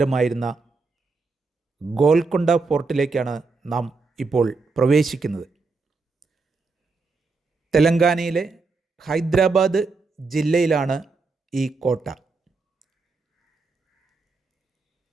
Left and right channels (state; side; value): quieter; left; 4.1 dB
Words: ഗോൽക്കൊണ്ട ഫോർട്ടിലേക്കാണ് നാം ഇപ്പോൾ പ്രവേശിക്കുന്നത്. തെലങ്കാനയിലെ ഹൈദരാബാദ് ജില്ലയിലാണ് ഈ കോട്ട.